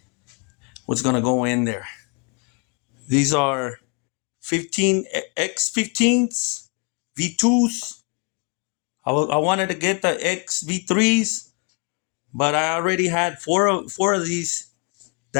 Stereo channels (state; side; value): quieter; right; 32.2 dB